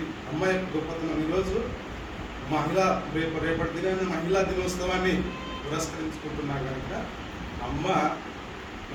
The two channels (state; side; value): identical; both; correlation 1.00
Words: అమ్మాయి గొప్పతనం. ఈరోజు రేపటి దినాన్ని మహిళా దినోత్సవాన్ని పురస్కరించుకుంటున్నా కనుక అమ్మ